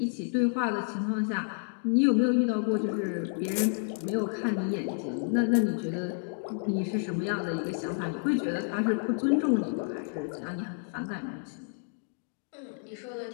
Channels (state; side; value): silent; right; 58 dB below the other